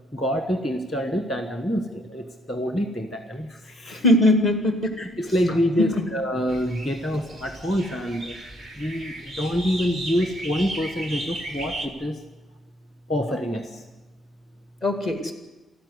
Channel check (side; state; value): both; normal; correlation 0.67